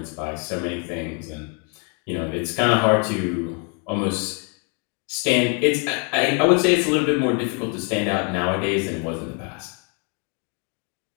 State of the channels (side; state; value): right; quieter; 37.7 dB